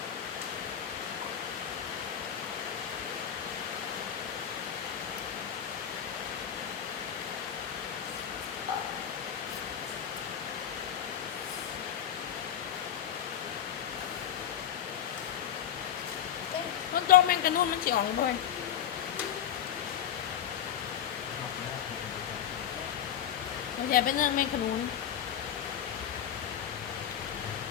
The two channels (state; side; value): quieter; right; 9.8 dB